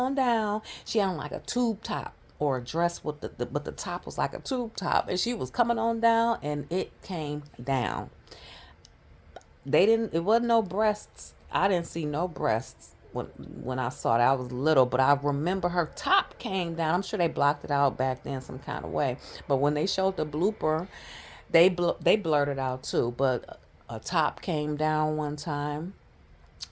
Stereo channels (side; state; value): both; identical; correlation 1.00